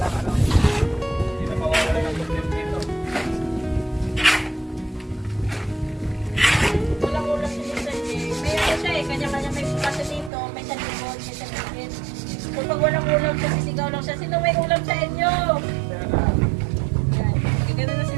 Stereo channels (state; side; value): drops out; left; at 10.3 s